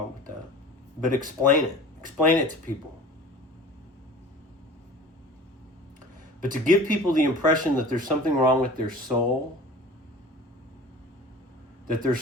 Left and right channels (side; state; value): both; normal; correlation 0.41